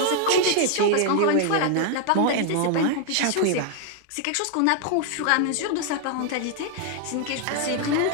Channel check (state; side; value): different; both; correlation 0.00